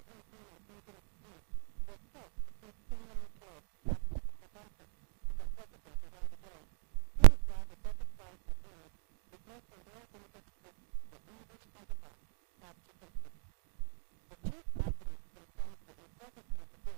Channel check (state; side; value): silent; left; 52 dB below the other